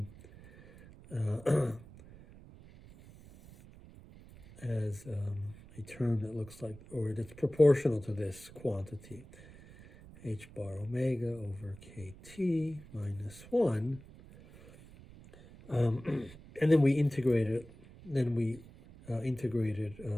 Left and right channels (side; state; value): right; noise; rumble, 20 dB below the sound